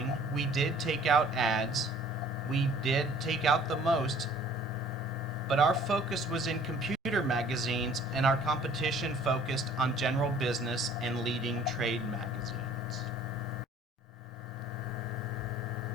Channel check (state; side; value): normal; both; correlation 0.54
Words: we did take out ads. We did take out the most, but our focus was in computer magazines, and our competition focused on general business and leading trade magazines.